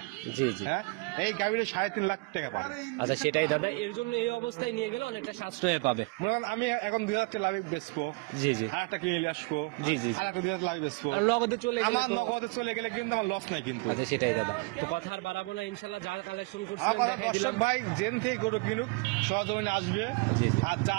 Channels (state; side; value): quieter; left; 28.5 dB